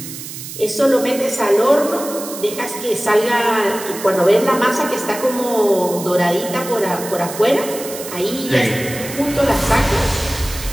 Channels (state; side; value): noise; right; hiss, 11 dB below the sound